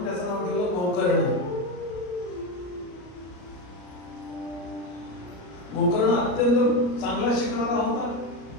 त्याचं नाव ठेवलं गोकर्ण. गोकर्ण अत्यंत चांगला शिकणारा होता.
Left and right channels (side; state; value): right; late; 34 ms